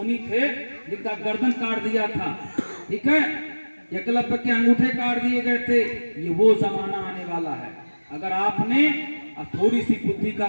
थे जिनका गर्दन काट दिया था, ठीक है, एकलव्य के अंगूठे काट दिए गए थे, ये वो जमाना आने वाला है। अगर आपने थोड़ी सी बुद्धि का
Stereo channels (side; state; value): both; inverted; correlation -1.00